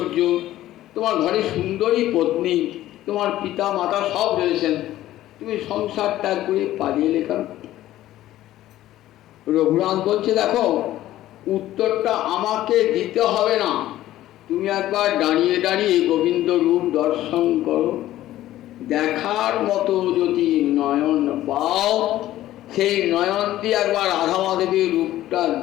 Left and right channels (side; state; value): right; quieter; 14.2 dB